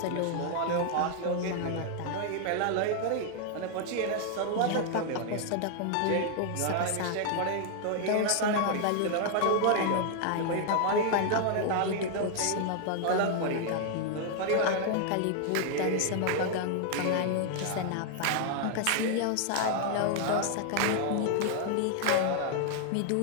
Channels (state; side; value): different; both; correlation 0.00